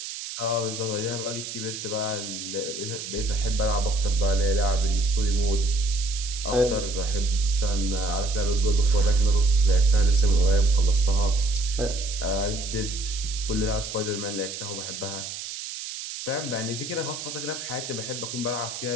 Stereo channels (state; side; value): noise; right; hiss, 8 dB below the sound